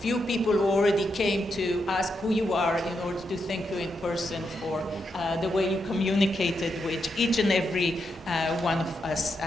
people who already came to ask who you are in order to thank you in person for the way you communicated with each and every one of us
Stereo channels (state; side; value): normal; both; correlation 0.83